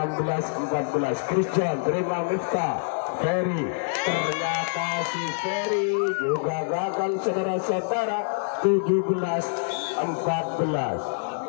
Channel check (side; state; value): right; silent; 61 dB below the other